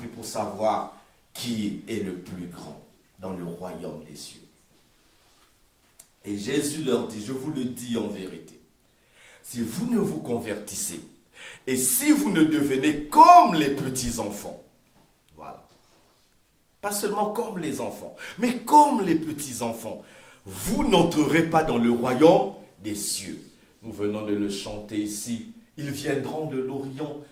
pour savoir qui est le plus grand dans le royaume des cieux. Et Jésus leur dit, je vous le dis en vérité, si vous ne vous convertissez et si vous ne devenez comme les petits enfants, voilà, pas seulement comme les enfants, mais comme les petits enfants, vous n'entrerez pas dans le royaume des cieux. Nous venons de le chanter ici. Ils viendront de l'Orient,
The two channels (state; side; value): identical; both; correlation 1.00